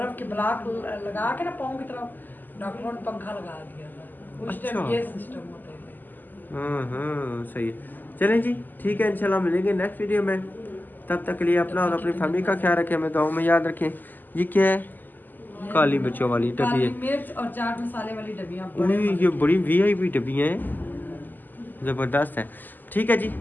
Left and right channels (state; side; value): late; right; 0.087 ms